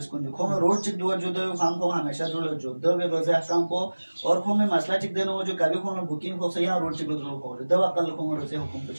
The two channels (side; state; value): both; inverted; correlation -1.00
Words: को जो खो में रोड चिक दुआ जो दे काम को हमेशा जो दो वे रोज़े हफ्ताम को और खो में मसला चिक देना वो जो कभी खो में बुकिंग हो से यहाँ रोड चिक दो खो दवा कल खो में रोज़े हुकुम